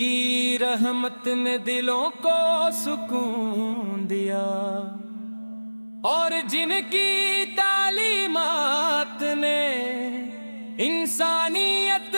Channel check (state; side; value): inverted; both; correlation -1.00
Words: رحمت نے دلوں کو سکون دیا اور جن کی تعلیمات نے انسانیت